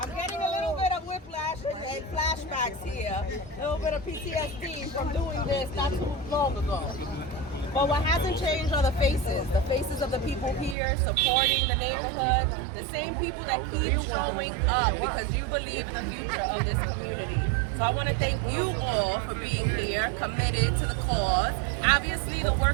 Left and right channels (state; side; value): drops out; left; at 10.8 s